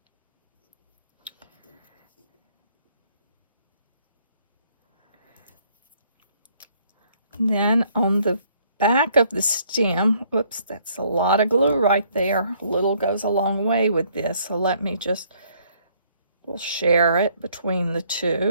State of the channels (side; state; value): both; inverted; correlation -0.65